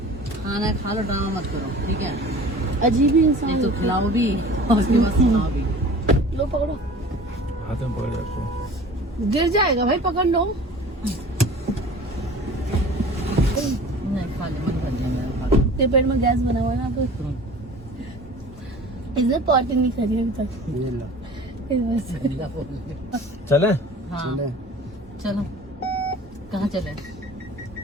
खाना खा लो, ड्रामा मत करो, ठीक है? अजीब ही इंसान नहीं तो खिलाओ भी और उसके बाद सुनाओ भी। लो पकड़ो, हाथ में पकड़ रखो। गिर जाएगा भाई, पकड़ लो। नहीं खा ले, मन भर जाएगा। तेरे पेट में गैस बना हुआ है ना, तो इधर पार्टी नहीं करी अभी तक। चले? हाँ चलो, कहाँ चले?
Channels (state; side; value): normal; both; correlation 0.43